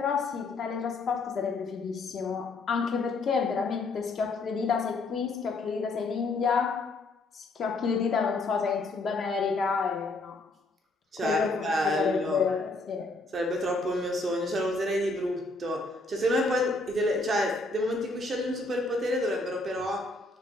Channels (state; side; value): quieter; right; 3.1 dB